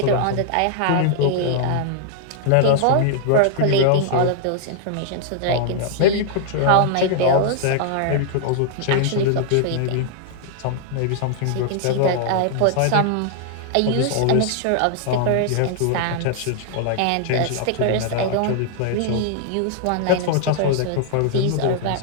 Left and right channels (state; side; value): different; both; correlation -0.01